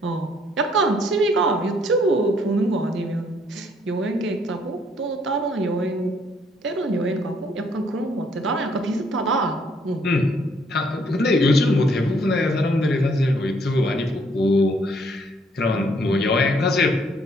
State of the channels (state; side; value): normal; both; correlation 0.66